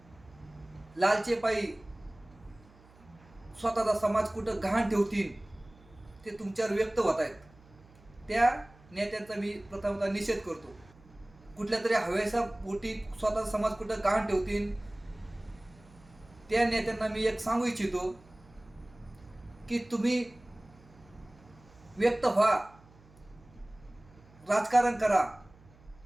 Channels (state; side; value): noise; right; hum, 26 dB below the sound